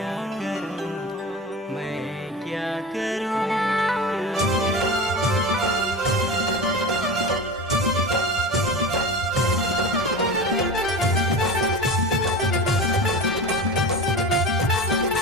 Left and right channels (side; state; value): both; normal; correlation 0.30